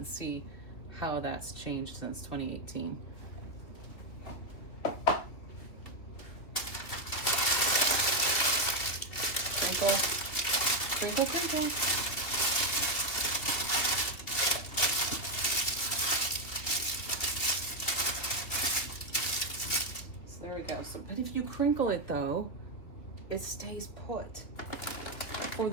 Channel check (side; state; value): right; late; 3.0 ms